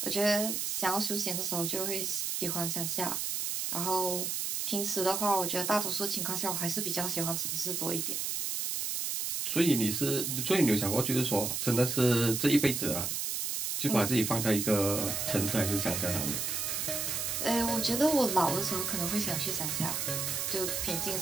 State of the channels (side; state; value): right; noise; hiss, 1 dB below the sound